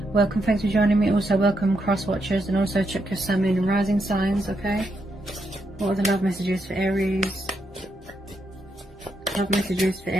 Welcome, thanks for joining me. Also welcome cross watchers, and also check your sun, moon and rising signs, okay? What are the love messages for Aries? Love messages for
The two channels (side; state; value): both; normal; correlation 0.80